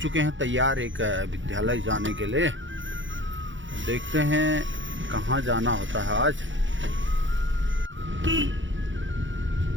हैं तैयार एक विद्यालय जाने के लिए। देखते हैं कहाँ जाना होता है आज।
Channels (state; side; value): late; left; 0.55 ms